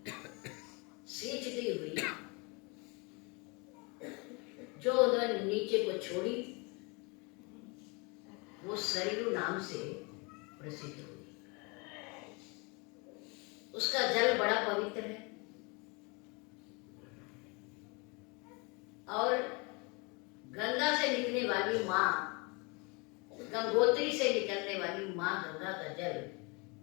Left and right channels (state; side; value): quieter; right; 29.8 dB